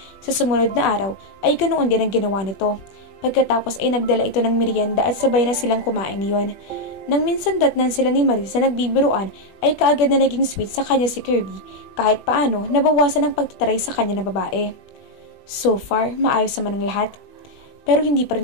Sa sumunod na araw ay ganoon din ang ginawa nito. Pagkatapos ay nagdala ito ng merienda at sabay na silang kumain niyon. Nang minsan datnan sila ni Marie sa nagbibiruan ay kaagad na naging sweet sa kanya si Kirby kahit paano nabawasan ang pagtataray sa kanya na babae. So far, maayos naman ang lahat. Pero hindi pa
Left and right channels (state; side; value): late; right; 20 ms